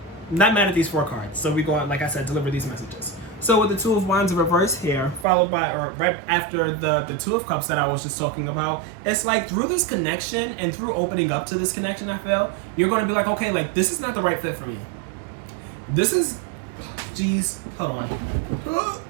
Not mad at these 4 cards. So we go on, like I said, deliver these messages. So with the Two of Wands in reverse here, followed by, or right after the Two of Cups that I was just talking about, it's like through this connection and through opening up to this connection, I feel, you're going to be like, okay, like this is not the right fit for me. This is, geez, hold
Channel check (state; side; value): drops out; left; at 5.2 s